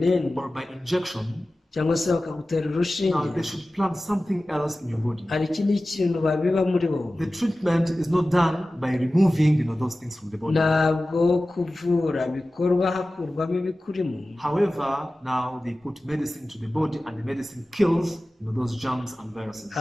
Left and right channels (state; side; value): normal; both; correlation 0.96